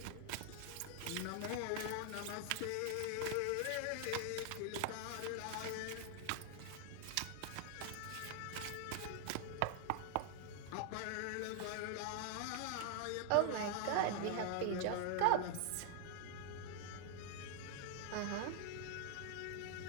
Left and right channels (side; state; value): both; different; correlation 0.00